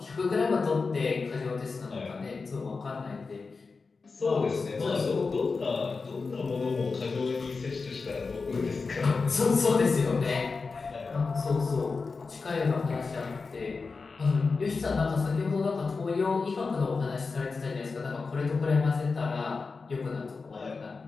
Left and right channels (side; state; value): right; quieter; 4.4 dB